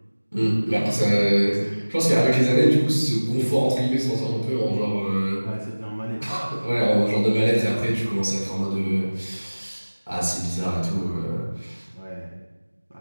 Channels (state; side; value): inverted; both; correlation -1.00